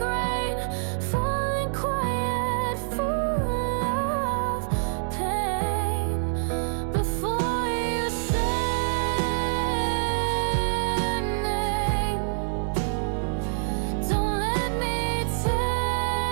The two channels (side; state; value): left; silent; 61 dB below the other